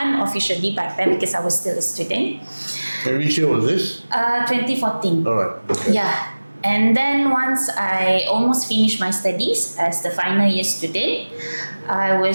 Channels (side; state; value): both; inverted; correlation -1.00